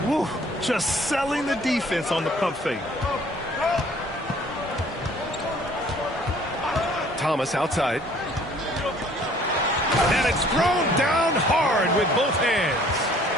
Woo, just selling the defense on the pump fake. Thomas outside. And it's thrown down hard with both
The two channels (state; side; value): normal; both; correlation 0.56